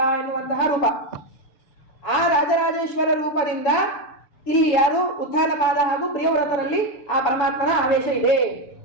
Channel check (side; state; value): right; late; 6.9 ms